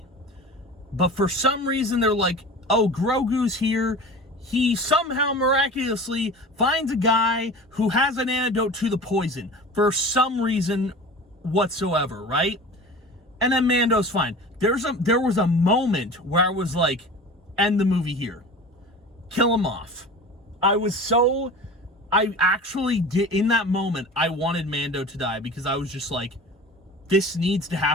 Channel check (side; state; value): both; normal; correlation 0.36